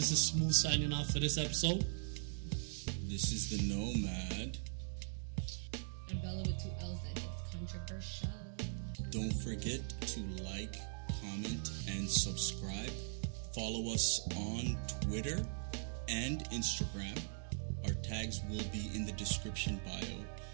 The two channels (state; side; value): silent; left; digital silence